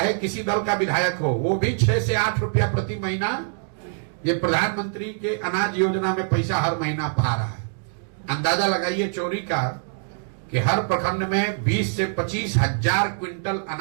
किसी दल का विधायक हो, वो भी 6 से 8 रुपया प्रति महीना ये प्रधानमंत्री के अनाज योजना में पैसा हर महीना पा रहा है। अंदाजा लगाइए चोरी का कि हर प्रखंड में 20 से 25 हजार क्विंटल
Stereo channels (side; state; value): left; silent; digital silence